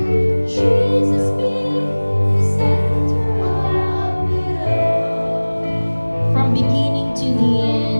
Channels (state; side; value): inverted; both; correlation -1.00